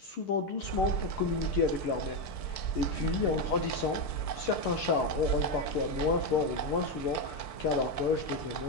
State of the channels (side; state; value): right; late; 6.7 ms